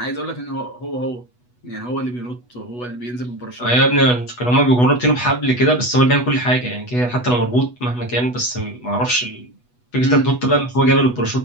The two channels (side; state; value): right; late; 8.2 ms